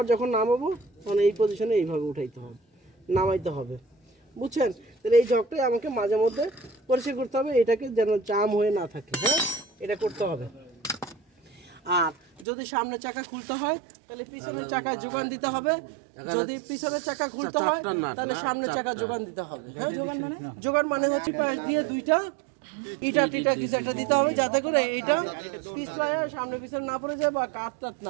যখন নামাবো তখন এই পজিশনে এইভাবে উঠাইতে হবে, নামাইতে হবে, বুঝছেন? তাহলে এই জগটাই আমাকে মাঝে মধ্যে পরিষ্কার করতে হবে, এটাকে যেন জাম হয়ে না থাকে, হ্যাঁ, এটা করতে হবে। আর যদি সামনের চাকা খুলতে হয় তাহলে পিছনের চাকায় যোগান দিতে হবে, যদি পিছনের চাকা খুলতে হয় তাহলে সামনের চাকা যোগান দিতে হবে। হ্যাঁ, যোগান মানে হচ্ছে পাশ দিয়ে দুইটা ইটা টিটা কিছু একটা দিতে হবে, যাতে করে এইটা পিছলায় সামনে পিছনে না পড়ে যায় বা কাট টাট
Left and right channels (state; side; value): drops out; left; at 12.5 s